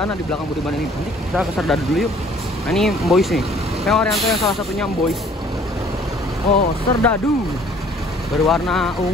di belakang Budiman ini. Nanti kita ke Serdadu dulu yuk. Nah, ini Boys nih. PO Haryanto yang salah satunya Boys. Oh, Serdadu berwarna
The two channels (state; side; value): normal; both; correlation 0.56